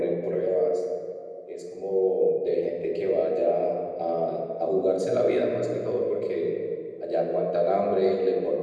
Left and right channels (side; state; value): both; identical; correlation 1.00